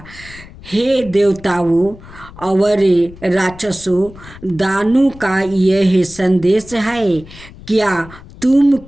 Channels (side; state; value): left; noise; rumble, 19 dB below the sound